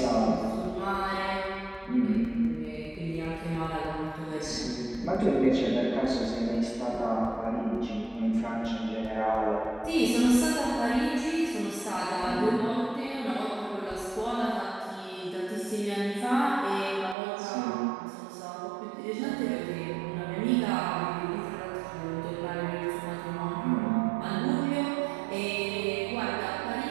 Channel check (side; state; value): left; drops out; at 17.2 s